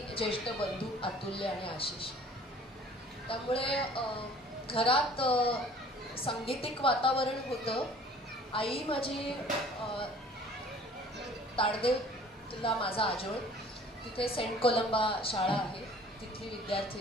ज्येष्ठ बंधू अतुल्य आणि आशिष. त्यामुळे घरात सांगीतिक वातावरण होतं. आई माझी ताडदेवला माझा आजोळ, तिथे सेंट कोलंबा शाळा आहे, तिथली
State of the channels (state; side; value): normal; both; correlation 0.51